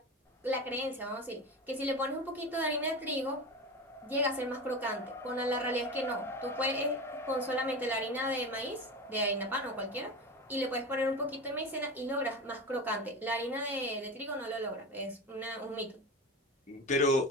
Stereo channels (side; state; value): both; normal; correlation 0.26